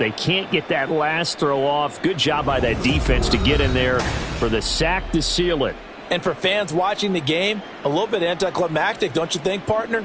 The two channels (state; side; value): identical; both; correlation 1.00